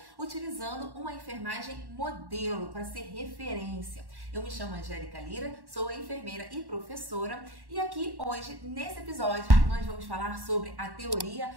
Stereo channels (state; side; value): late; left; 1.1 ms